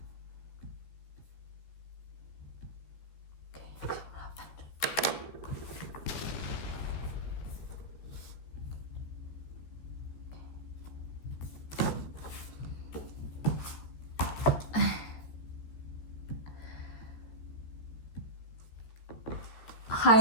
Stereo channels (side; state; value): right; late; 14 ms